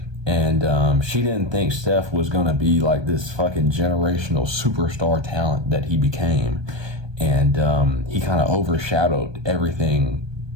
And she didn't think Steph was going to be like this fucking generational superstar talent that he became. And he kind of overshadowed everything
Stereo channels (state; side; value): late; left; 1.2 ms